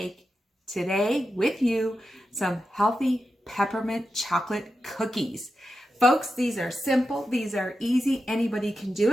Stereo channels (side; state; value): both; normal; correlation 0.89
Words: today with you some healthy peppermint chocolate cookies. Folks, these are simple. These are easy. Anybody can do